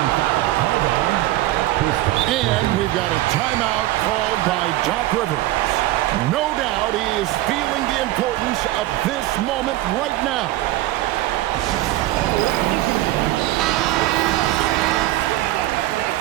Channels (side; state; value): left; quieter; 16.2 dB